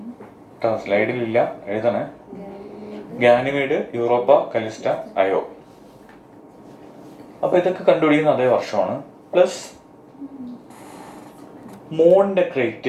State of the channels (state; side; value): identical; both; correlation 1.00